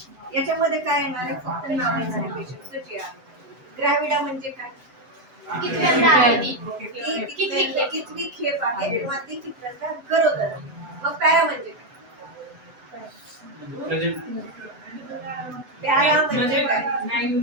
याच्यामध्ये काय येणार आहे, फक्त नाव येणार आहे पेशंटचं जे आहे. ग्रॅव्हिडा म्हणजे काय, कितवी खेप आहे किंवा ती कितव्यांदा गरोदर. मग पॅरा म्हणजे काय, पॅरा म्हणजे काय, 9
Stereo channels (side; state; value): left; late; 8.0 ms